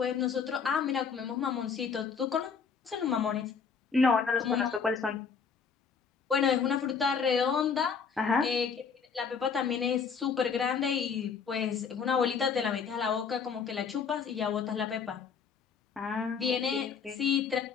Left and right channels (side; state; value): right; quieter; 6.0 dB